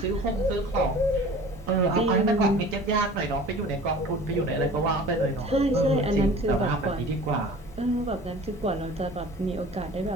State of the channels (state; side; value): normal; both; correlation 0.43